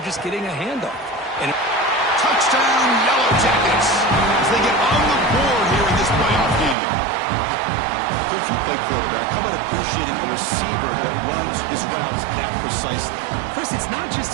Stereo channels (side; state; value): left; drops out; at 6.8 s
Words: just getting a handoff. And touchdown, Yellow Jackets, as they get on the board here in this playoff game. Coach, you play quarterback. How about appreciating a receiver that runs his routes that precisely? Chris, it's not just